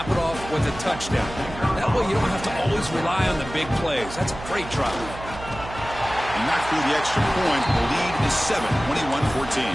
it off with a touchdown. That way you don't have to always rely on the big plays. That's a great drive. Knocked through the extra point. The lead is 7, 21-14.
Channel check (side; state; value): right; noise; hum, 12 dB below the sound